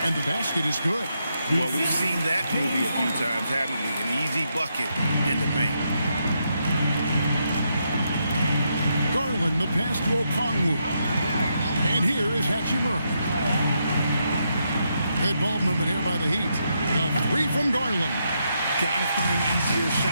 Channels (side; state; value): both; inverted; correlation -0.80